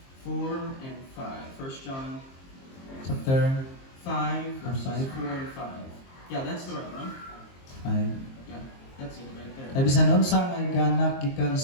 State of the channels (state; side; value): late; right; 22 ms